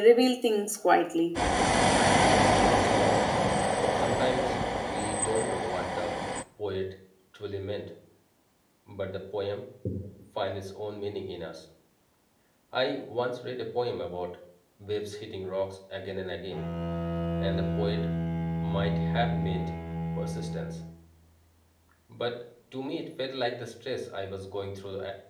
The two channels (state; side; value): identical; both; correlation 1.00